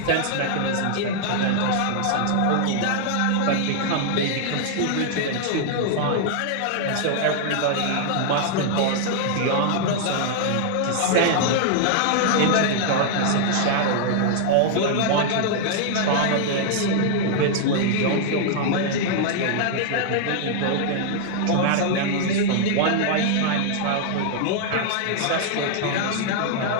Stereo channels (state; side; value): different; both; correlation 0.00